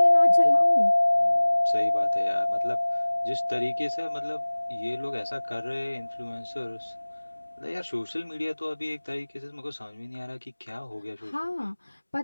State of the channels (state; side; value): inverted; both; correlation -1.00